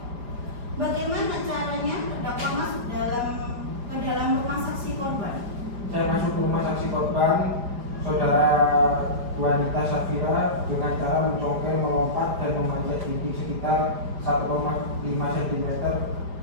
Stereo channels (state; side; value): late; left; 4.9 ms